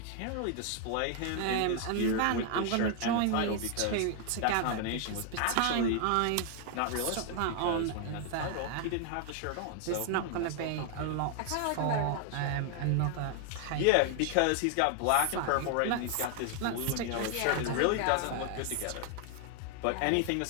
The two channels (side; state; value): both; different; correlation 0.00